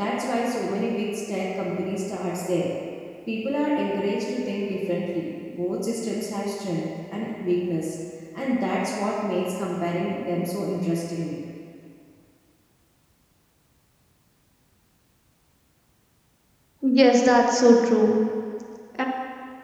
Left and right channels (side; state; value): both; identical; correlation 1.00